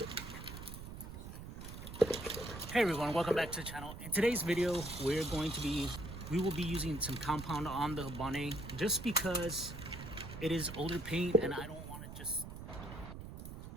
everyone, welcome back to the channel. In today's video, we will be using some compound on the bonnet just because it is older paint and I don't want to just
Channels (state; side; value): noise; right; rumble, 10 dB below the sound